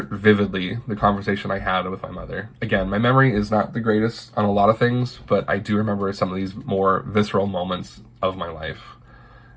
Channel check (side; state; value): both; identical; correlation 1.00